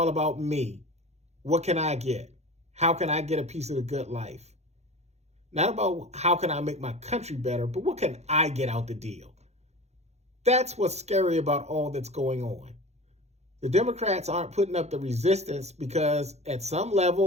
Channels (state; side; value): late; left; 0.32 ms